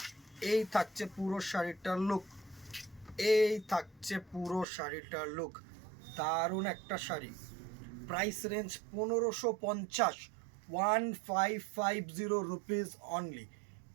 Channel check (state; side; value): drops out; left; at 4.7 s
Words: এই থাকছে পুরো শাড়িটার লুক, এই থাকছে পুরো শাড়িটার লুক, দারুণ একটা sari. Price range 1550, 1550 rupees only.